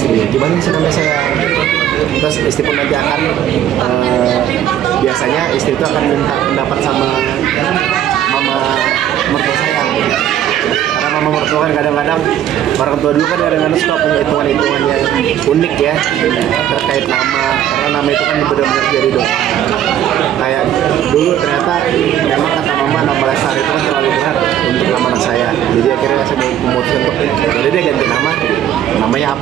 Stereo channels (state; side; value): quieter; left; 10.9 dB